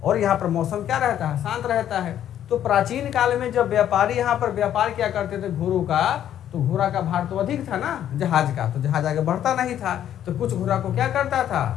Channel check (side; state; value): right; quieter; 10.7 dB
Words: और यहाँ पर मौसम क्या रहता है, शांत रहता है। तो प्राचीन काल में जब व्यापारी यहाँ पर व्यापार क्या करते थे घोड़ों का, तो घोड़ा का भार तो अधिक था ना जहाज का, तो जहाज आगे बढ़ता नहीं था, तो कुछ घोड़ा को क्या करता था,